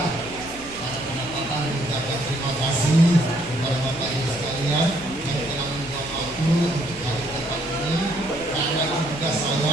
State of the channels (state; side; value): noise; right; hum, 19 dB below the sound